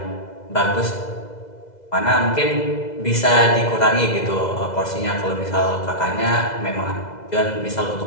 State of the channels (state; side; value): late; right; 2.0 ms